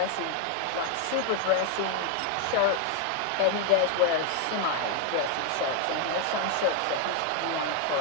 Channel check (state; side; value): different; both; correlation 0.00